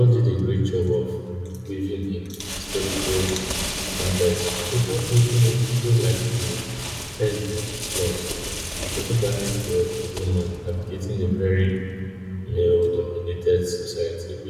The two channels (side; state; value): both; identical; correlation 1.00